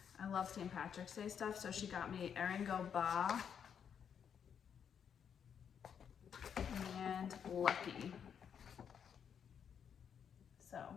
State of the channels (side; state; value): right; quieter; 7.8 dB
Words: I love St. Patrick's Day stuff, so she got me Eringo Ba and Lucky. So